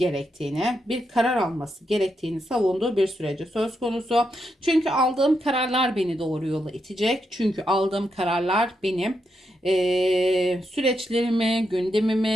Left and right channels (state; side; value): normal; both; correlation 0.83